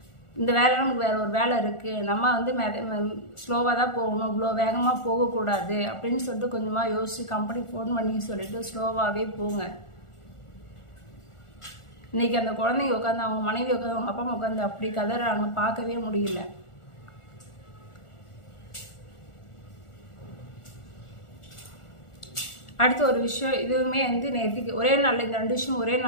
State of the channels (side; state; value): right; late; 1.4 ms